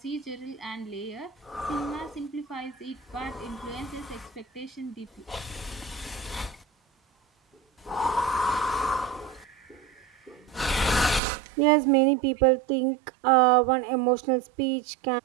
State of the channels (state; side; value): drops out; left; at 11.2 s